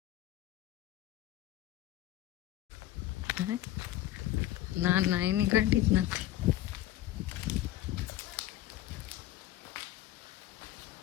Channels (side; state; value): right; quieter; 13.9 dB